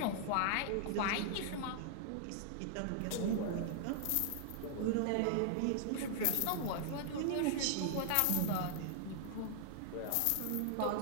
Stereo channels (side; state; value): both; different; correlation -0.01